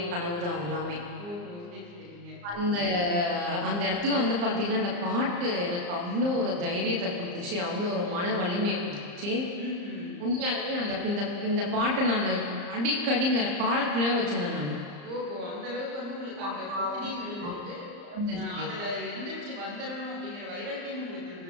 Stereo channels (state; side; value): late; left; 34 ms